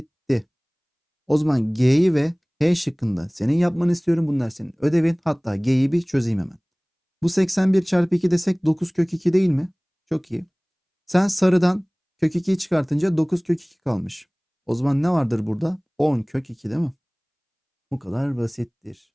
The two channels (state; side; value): identical; both; correlation 1.00